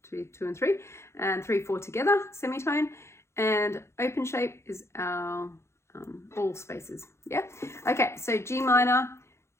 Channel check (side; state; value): right; late; 0.13 ms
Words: 2, 2 and 3, and 3, 4 together, semitone. And open shape is our all spaces. Yeah. Okay. So G minor,